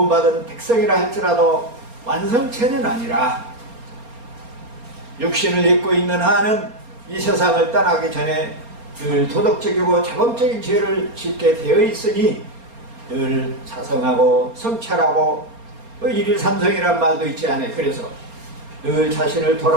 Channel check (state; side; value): late; left; 4.3 ms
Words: 백성이라 할지라도 완성체는 아니라 육신을 입고 있는 한은 이 세상을 떠나기 전에 늘 도덕적이고 자범적인 죄를 짓게 되어 있으니 늘 자성하고 성찰하고 일일삼성이란 말도 있지 않아요. 그래서 늘 자신을